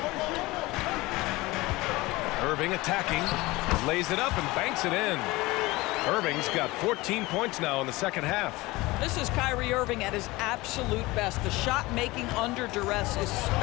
Irving attacking, lays it up and banks it in. Irving's got 14 points now in the second half. This is Kyrie Irving at his absolute best. The shot making under duress is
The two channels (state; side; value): quieter; right; 21.0 dB